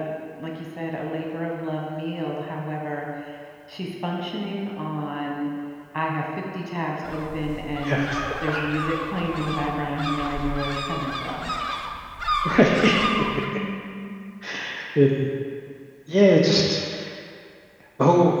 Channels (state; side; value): identical; both; correlation 1.00